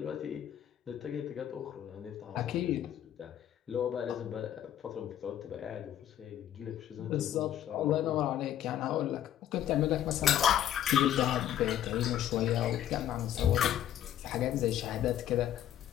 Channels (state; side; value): quieter; right; 11.1 dB